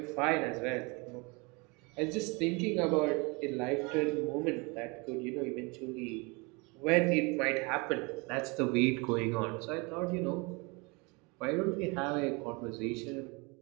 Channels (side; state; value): left; quieter; 28.7 dB